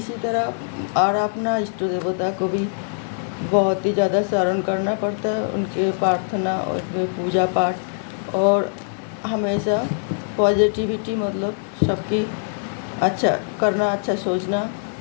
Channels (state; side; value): silent; right; digital silence